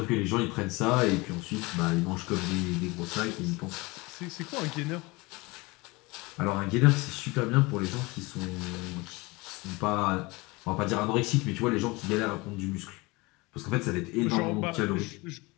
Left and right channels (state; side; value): quieter; right; 24.2 dB